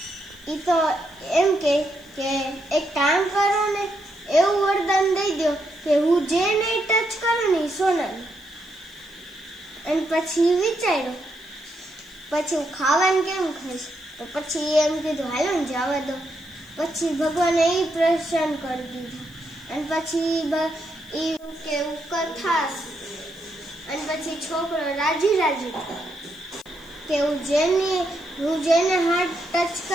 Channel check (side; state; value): left; noise; hiss, 28 dB below the sound